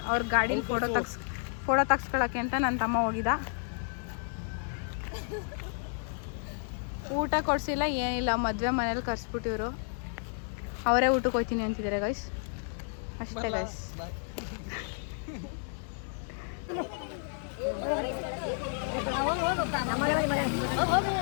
ಅವ್ರ ಗಾಡೀಲಿ ಫೋಟೋ ತಗ್ಸ್ಕೊಳಕ್ಕೆ ಅಂತ ನನ್ನ ತಮ್ಮ ಹೋಗಿದ್ದ. ಊಟ ಕೊಡ್ಸಿಲ್ಲ ಏನಿಲ್ಲ, ಮದುವೆ ಮನೇಲಿ ಕರ್ಸ್ಬಿಟ್ಟಿವ್ರು. ಅವರೇ ಊಟಕ್ಕೆ ಹೋಗ್ತೀನಿ ಅಂತಿದ್ದಾರೆ ಗೈಸ್. ಅಷ್ಟೇ guys.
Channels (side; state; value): right; silent; 57 dB below the other